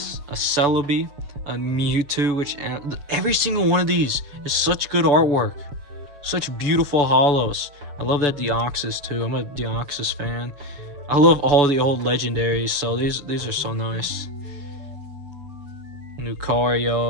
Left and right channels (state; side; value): late; left; 7.0 ms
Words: a Celebi, a Mewtwo, which every single one of these is such good artwork. Such beautiful holos. I love that Deoxys too. I'm a Deoxys fan. I love all the old legendaries, so these are so nice.